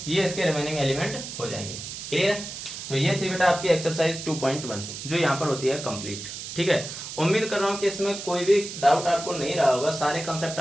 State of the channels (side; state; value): right; noise; hiss, 9 dB below the sound